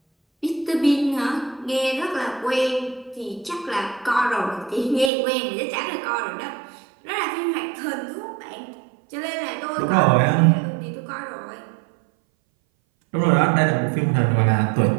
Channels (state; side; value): drops out; left; at 5.1 s